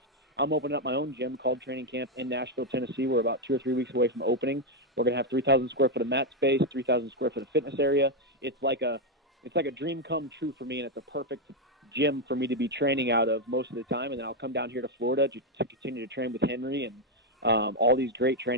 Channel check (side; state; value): both; normal; correlation 0.03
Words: I'm opening up my own gym called Training Camp in Nashville, Tennessee. We're about 2 or 3 weeks away from opening. We're going to have 3,000 square foot of mat space, 3,000 square foot of fitness area. It's like a dream come true for me, and it's a perfect gym for me to be training out of most of the time. And then I'll come down here to Florida to continue to train with Henry and all these great